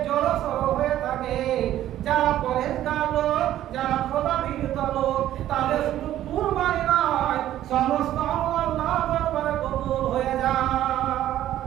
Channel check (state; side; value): quieter; left; 12.7 dB